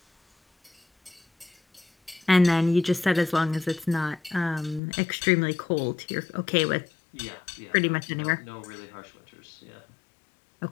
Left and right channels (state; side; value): drops out; right; at 4.8 s